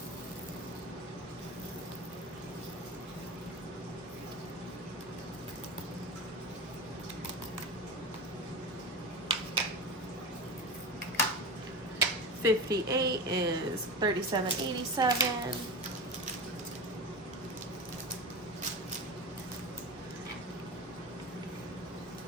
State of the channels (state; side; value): normal; both; correlation 0.25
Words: $58 is 37.87.